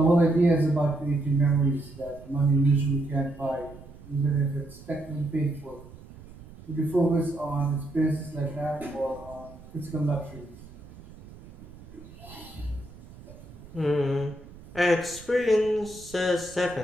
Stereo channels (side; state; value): right; noise; rumble, 19 dB below the sound